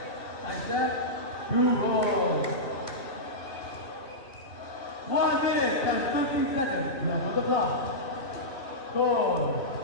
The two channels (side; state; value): right; late; 2.6 ms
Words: Side step. 2 balls. 1 minute and 50 seconds left on the clock. Score